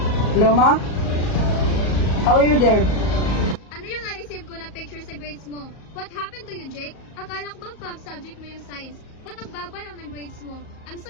Hello, ma? How are you there? Ano yung na-receive ko na picture sa grades mo? What happened to you, Jake? Akala ko bang top subject mo yung science? Ba't ang baba lang ng grades mo? I'm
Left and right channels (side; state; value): right; late; 38 ms